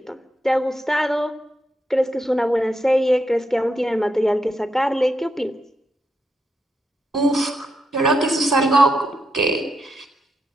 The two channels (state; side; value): normal; both; correlation 0.83